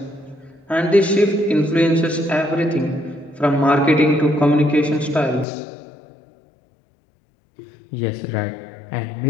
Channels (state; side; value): drops out; right; at 5.5 s